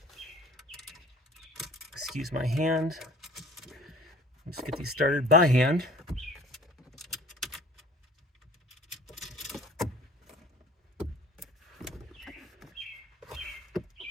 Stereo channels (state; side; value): normal; both; correlation 0.48